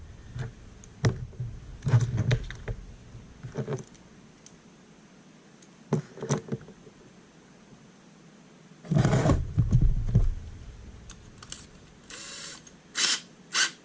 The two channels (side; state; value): both; identical; correlation 1.00